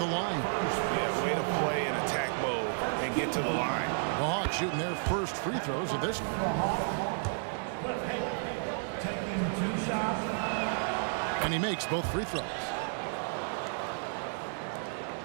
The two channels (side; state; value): left; silent; digital silence